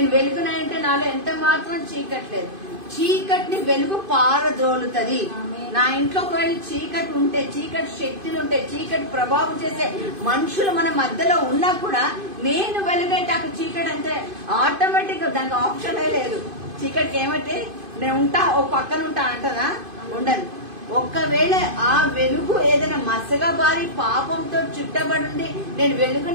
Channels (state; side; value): late; left; 2.5 ms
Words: వెలుగునై ఉంటే నాలో ఎంత మాత్రం చీకట్లేదు. చీకటిని వెలుగు పారద్రోలుతుంది. నా ఇంట్లో ఒకవేళ చీకటి ఉంటే, చీకటి శక్తులు ఉంటే, చీకటి ప్రభావం చేసే మనుషులు మన మధ్యలో ఉన్నా కూడా నేను వెలుగైతే అక్కడ చీకటి అంటే ఆటోమేటిక్ గా దానికి ఆప్షనే లేదు. చీకటికి ఏమంటే నేను ఉంటా, ఓ పక్కన ఉంటా అంటదా? ఉండదు. ఒక్కవేళ ఆ వెలుగు ఏదైనా మసగా బారి పాపంతో చుట్టబడి నేను